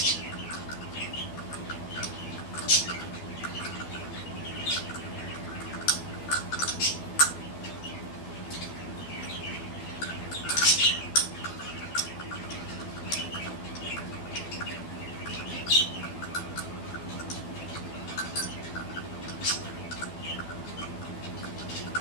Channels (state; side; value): late; right; 12 ms